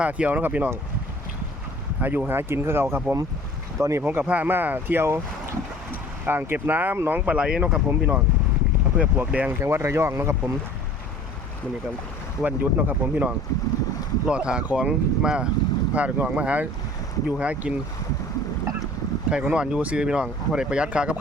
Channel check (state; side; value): normal; both; correlation 0.47